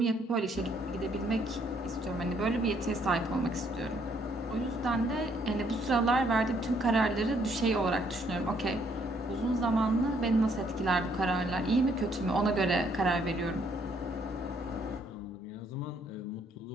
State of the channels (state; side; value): normal; both; correlation 0.68